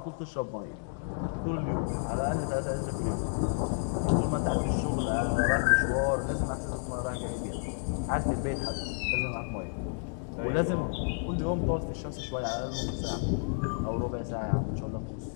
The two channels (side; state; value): right; silent; digital silence